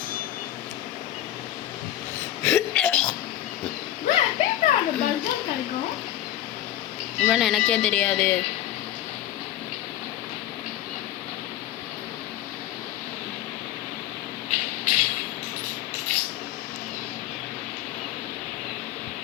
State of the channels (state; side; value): quieter; right; 13.0 dB